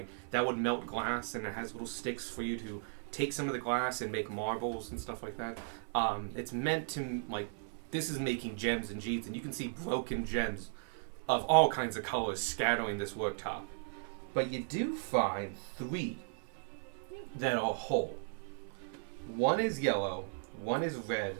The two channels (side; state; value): left; silent; 54 dB below the other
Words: that would melt glass, and it has little sticks for you to take some of the glass and make marbles and stuff like that. It's meant to, like, this is making gems and jades, and you can see broken gems of all kinds of colors scattering this worktop. But you do find 3 that are whole. One is yellow, one is red,